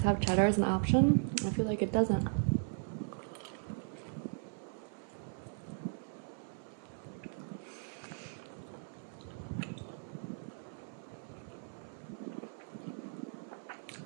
have cheddar as an option? I feel like it doesn't.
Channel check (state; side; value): silent; left; 53 dB below the other